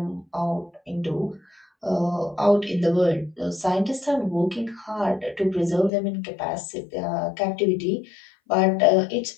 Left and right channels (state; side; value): drops out; right; at 5.9 s